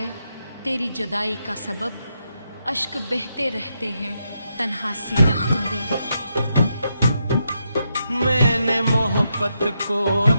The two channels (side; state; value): both; inverted; correlation -0.83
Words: तेरी जुदाई का सबब। अश्क बहते रहते हैं तन्हा सी रख्म दे। मैंने मोहब्बत को